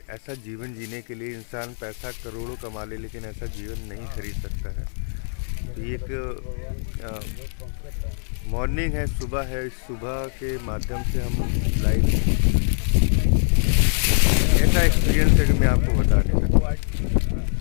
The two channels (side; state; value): right; silent; 62 dB below the other